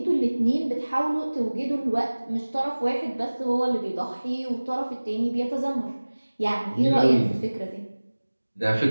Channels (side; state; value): both; inverted; correlation -1.00